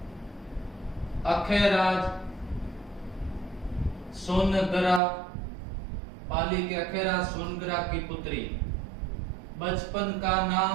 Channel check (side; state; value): left; drops out; at 5.0 s